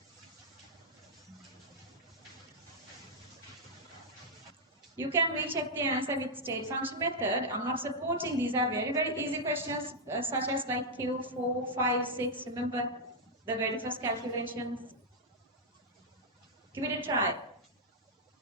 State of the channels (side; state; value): both; normal; correlation -0.04